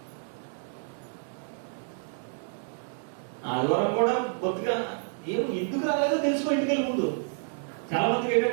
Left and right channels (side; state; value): left; silent; digital silence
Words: ఆదివారం కూడా బొత్తుగా ఎందుకు రాలేదో తెలుసుకో ఇంటికి వెళ్ళి ముందు. చాలా మందికి